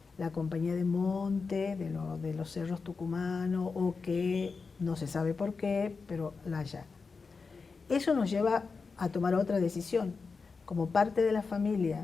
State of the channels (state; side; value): quieter; right; 4.7 dB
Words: la compañía de monte, de los cerros tucumanos, o que no se sabe por qué, pero la allanan. Eso nos lleva a tomar otra decisión. Como parte de la